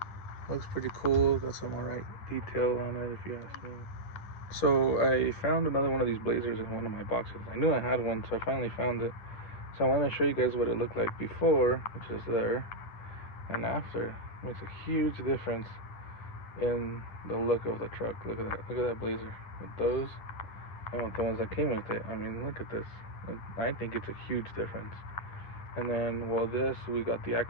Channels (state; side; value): late; right; 10 ms